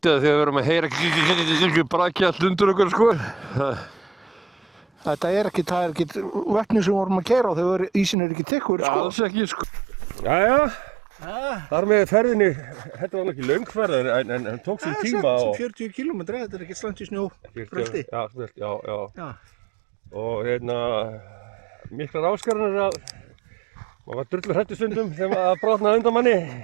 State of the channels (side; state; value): left; drops out; at 8.2 s